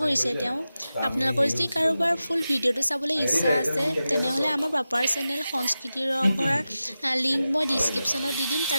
কৰিছে তেওঁ আপোনালোকৰ যদি কাৰোবাৰ ফুল ভিডিঅ'টো চাবলৈ ইচ্ছা আছে তেনেহ'লে আমাৰ পাপাৰ চেনেল সংস্কৃতিৰ ৰংঘৰৰ লিংক মই ডিছক্ৰিপশ্যনত দি দিম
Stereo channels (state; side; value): inverted; both; correlation -0.93